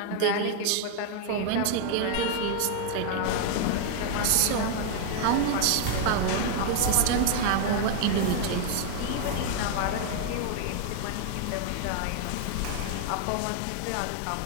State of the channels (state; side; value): different; both; correlation 0.00